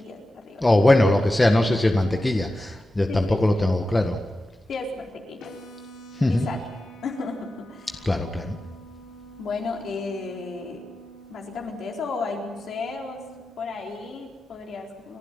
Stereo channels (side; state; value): both; normal; correlation 0.92